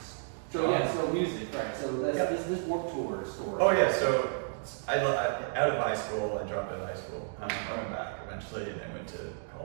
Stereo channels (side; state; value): left; silent; digital silence